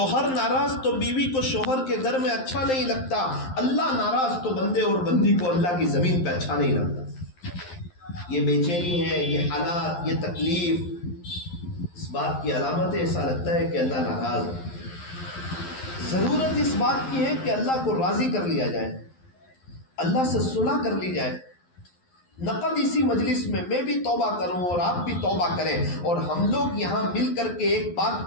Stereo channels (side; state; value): right; late; 11 ms